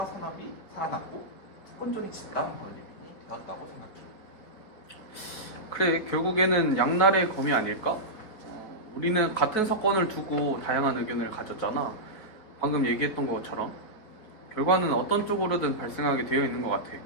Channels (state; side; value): late; right; 5.1 ms